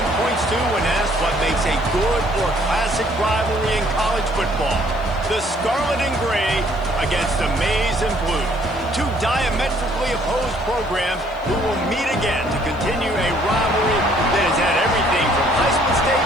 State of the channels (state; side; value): noise; left; hiss, 30 dB below the sound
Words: points to when asked what makes a good or classic rivalry in college football. The Scarlet and Gray against the Maize and Blue. Two diametrically opposed programs who will meet again to continue a rivalry that has had everything from Heisman